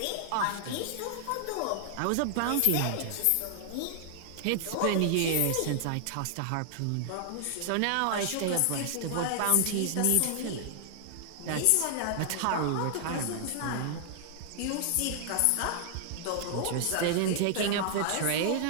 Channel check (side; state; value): both; different; correlation 0.00